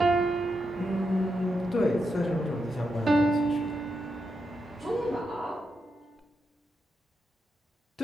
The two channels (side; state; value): both; normal; correlation 0.85